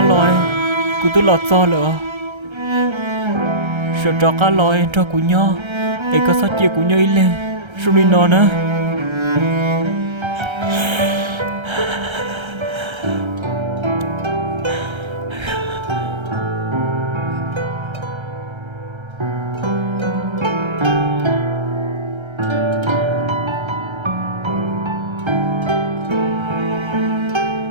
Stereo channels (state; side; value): late; left; 1.3 ms